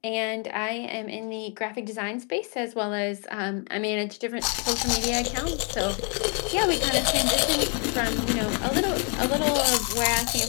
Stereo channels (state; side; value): quieter; right; 38.2 dB